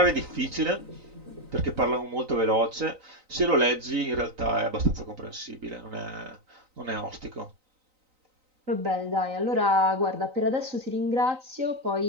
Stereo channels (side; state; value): left; late; 3.9 ms